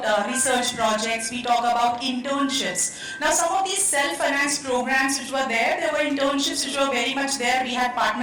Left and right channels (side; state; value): both; identical; correlation 1.00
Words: research projects, we talk about internships. Now, some of these self-financed programs which were there were internships which were very much there. We had